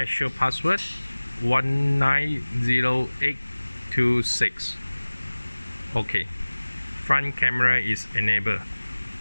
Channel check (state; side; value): inverted; both; correlation -1.00